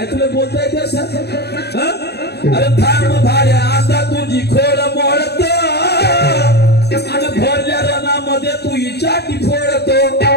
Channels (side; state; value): right; late; 0.48 ms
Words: तुले बोलता है क्या सर अरे थांब भाड्या आता तुझी खोड मोडत आणि भरल्या रणामध्ये तू इचाटी फोडतो